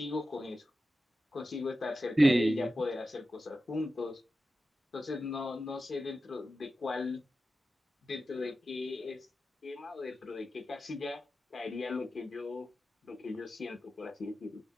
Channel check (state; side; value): normal; both; correlation 0.92